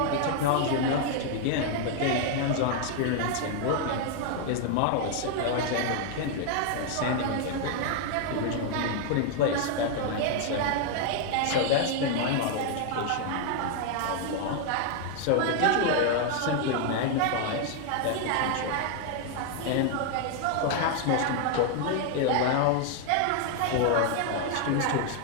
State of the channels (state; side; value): different; both; correlation 0.00